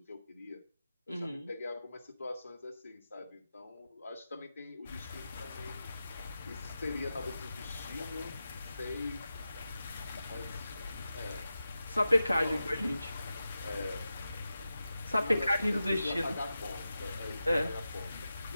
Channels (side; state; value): both; inverted; correlation -0.92